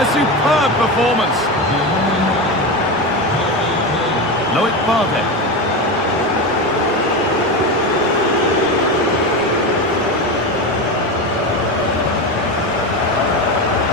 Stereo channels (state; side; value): noise; left; rumble, 25 dB below the sound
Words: A superb performance. Loic Bardet.